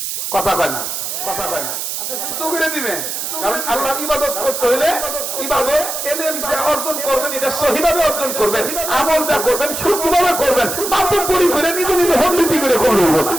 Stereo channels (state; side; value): noise; right; hiss, 4 dB below the sound